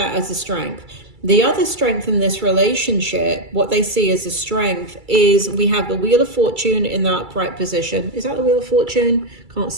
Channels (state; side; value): late; left; 2.3 ms